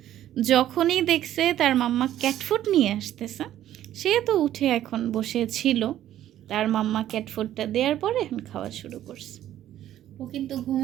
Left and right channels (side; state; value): left; quieter; 12.2 dB